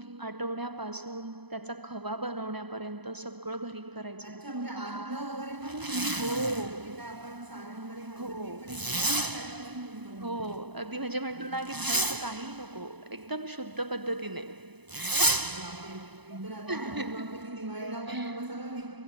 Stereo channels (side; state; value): left; late; 0.99 ms